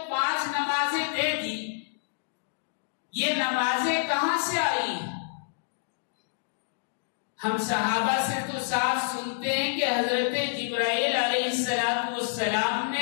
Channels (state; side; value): silent; right; digital silence